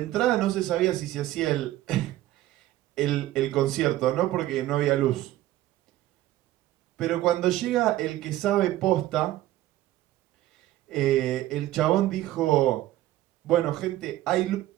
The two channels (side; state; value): left; quieter; 15.0 dB